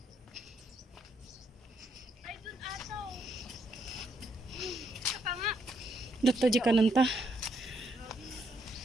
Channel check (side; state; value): both; normal; correlation 0.74